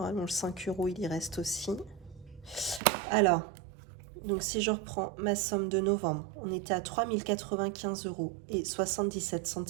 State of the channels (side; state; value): left; drops out; at 2.8 s